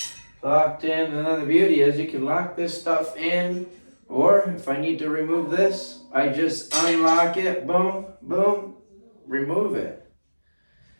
locked in. And then the beauty is you can lock this stuff in, or if I need to remove this, I just unlock it, boom, boom, remove it.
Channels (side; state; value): both; inverted; correlation -1.00